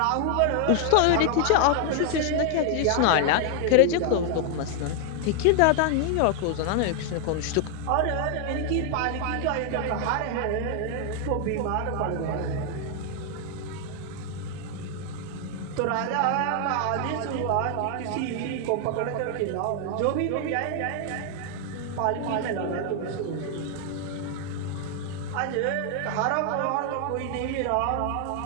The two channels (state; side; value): different; both; correlation 0.00